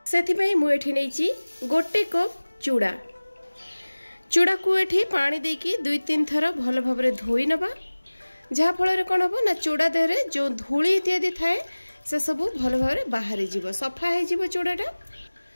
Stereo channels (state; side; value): inverted; both; correlation -1.00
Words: सेथि पई मु एठी नैची गोटे कप चूड़ा। चूड़ा को एठी पानी देकी 2-3 थर भलो भाबरे धोई नबा, जहा फल कौन हम ना चूड़ा देहरे जो धूली इत्यादि थाए से सब भल भाव बाहरी जीव, सफा हो चूड़ाटा।